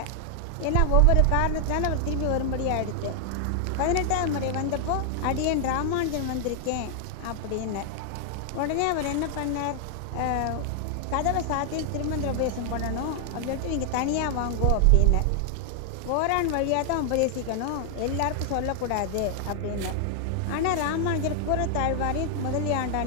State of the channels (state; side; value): different; both; correlation 0.00